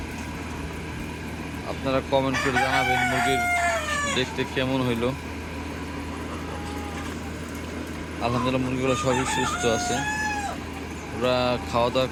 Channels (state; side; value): identical; both; correlation 1.00